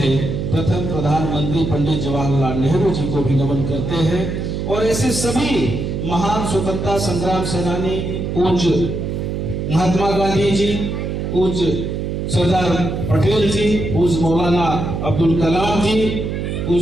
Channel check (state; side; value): noise; right; hum, 3 dB below the sound